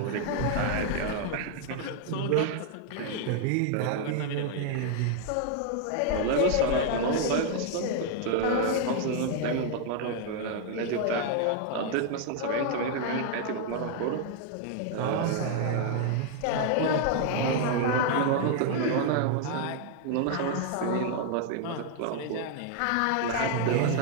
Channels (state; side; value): different; both; correlation 0.00